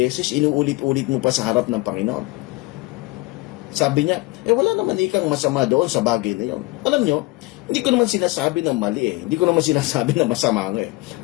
inuulit-ulit mo pa sa harap ng Panginoon. Sabi niya, wala naman ikang masama doon sa bagay na yun. Alam nyo, hindi ko naman sinasabi na mali Hindi ko naman sinasabi na masama nga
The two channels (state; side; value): quieter; right; 21.9 dB